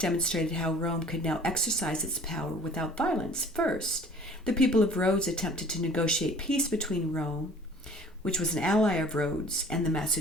how Rome could now exercise its power without violence. First, the people of Rhodes attempted to negotiate peace between Rome, which was an ally of Rhodes, and the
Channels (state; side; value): normal; both; correlation 0.49